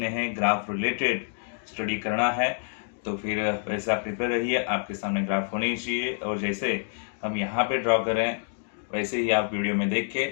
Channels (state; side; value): silent; right; digital silence